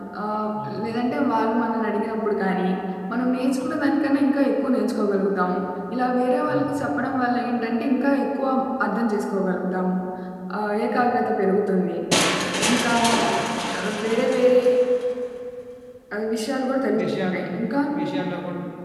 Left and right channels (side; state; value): both; identical; correlation 1.00